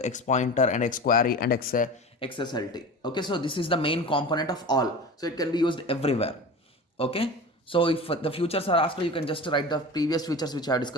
XPointer, and XQuery and XSLT. Okay, so this is the main component of all. So it can be used everywhere. Okay, so if the features are asked, you can just write the previous features which I have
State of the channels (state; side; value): normal; both; correlation 0.32